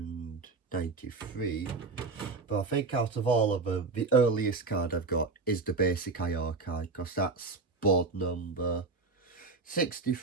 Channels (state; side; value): quieter; left; 3.9 dB